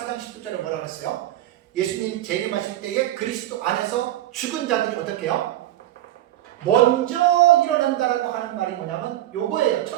4장 10절에 뭐라 그랬어요? 예수님 재림하실 때에 그리스도 안에서 죽은 자들이 어떻게 해요? 먼저 일어난다라고 하는 말이 뭐냐면 요거예요.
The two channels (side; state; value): left; quieter; 13.9 dB